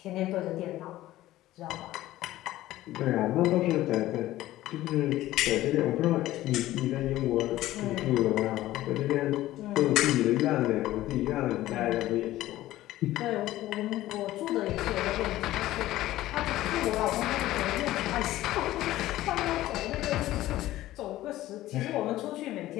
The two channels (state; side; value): quieter; right; 15.4 dB